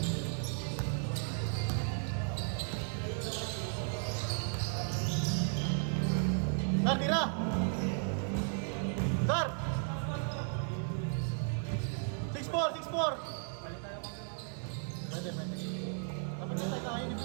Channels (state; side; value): silent; left; 54 dB below the other